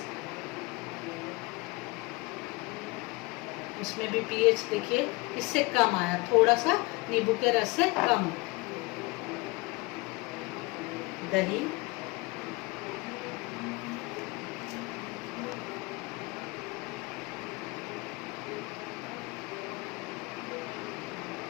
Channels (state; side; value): quieter; right; 24.4 dB